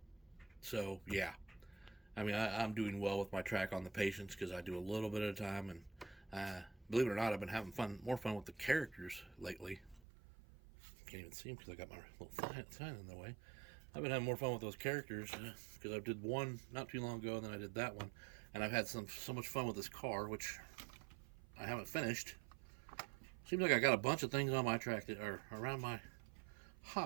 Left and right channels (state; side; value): drops out; left; at 10.0 s